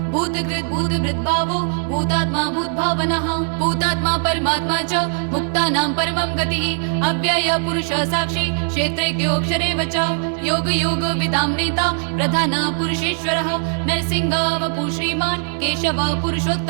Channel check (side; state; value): left; silent; 59 dB below the other